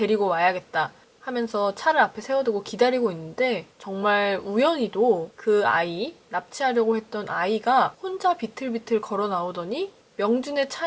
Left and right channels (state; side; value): identical; both; correlation 1.00